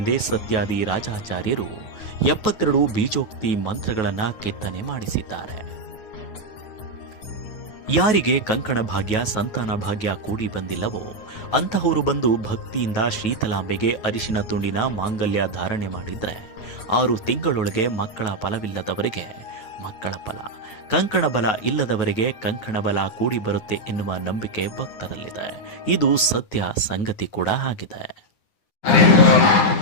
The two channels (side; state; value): right; late; 9.3 ms